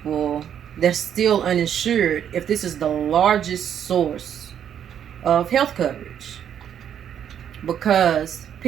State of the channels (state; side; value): quieter; left; 9.2 dB